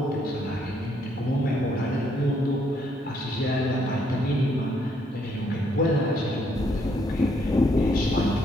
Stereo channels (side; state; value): both; normal; correlation 0.71